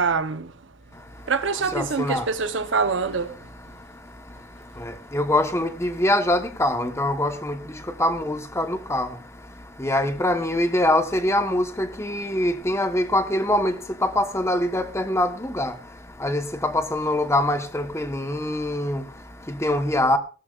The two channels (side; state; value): both; normal; correlation 0.57